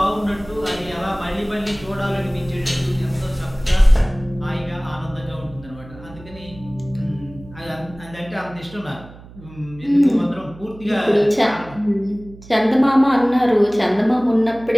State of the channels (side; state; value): right; noise; hum, 19 dB below the sound